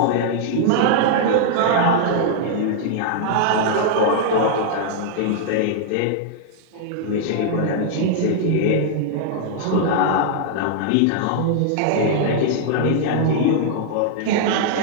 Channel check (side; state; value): both; different; correlation -0.01